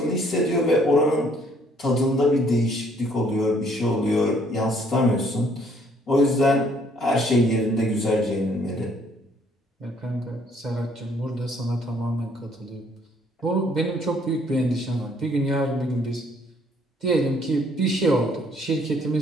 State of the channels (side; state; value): both; normal; correlation 0.63